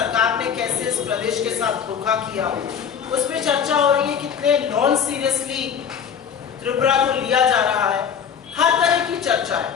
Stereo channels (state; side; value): quieter; right; 7.5 dB